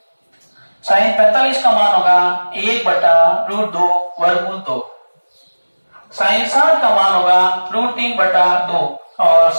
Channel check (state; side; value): inverted; both; correlation -1.00